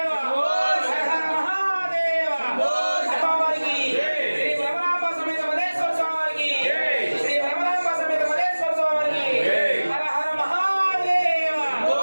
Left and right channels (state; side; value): inverted; both; correlation -1.00